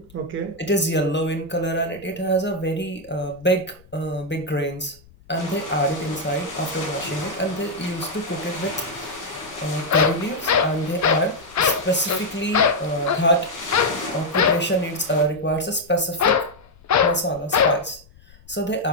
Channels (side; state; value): left; noise; rumble, 26 dB below the sound